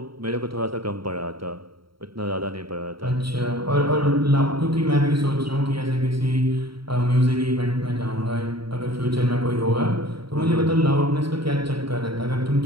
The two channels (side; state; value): left; late; 0.74 ms